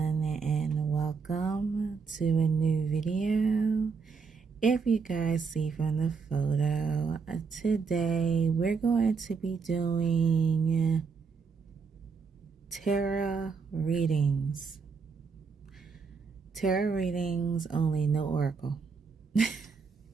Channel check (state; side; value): quieter; left; 5.2 dB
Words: and welcome to a new video. If you guys see from the photo, today we're going to be doing tarot readings. Tarot readings only, no oracle.